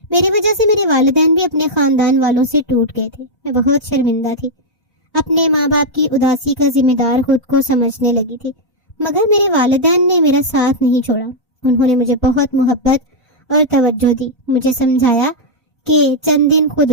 میری وجہ سے میرے والدین بھی اپنے خاندان والوں سے ٹوٹ گئے تھے. میں بہت شرمندہ تھی. اپنے ماں باپ کی اداسی کا ذمہ دار خود کو سمجھنے لگی تھی، مگر میرے والدین نے میرا ساتھ نہیں چھوڑا. انہوں نے مجھے بہت محبت اور توجہ دی. مجھے سمجھایا کہ چند دن خود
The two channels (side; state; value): both; normal; correlation -0.04